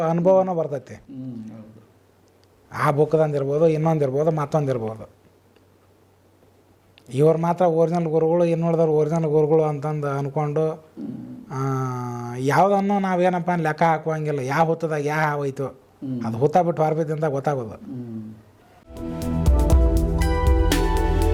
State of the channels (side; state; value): both; identical; correlation 1.00